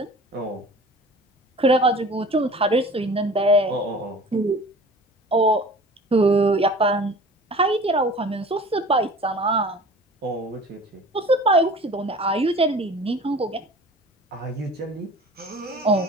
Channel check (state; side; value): normal; both; correlation 0.43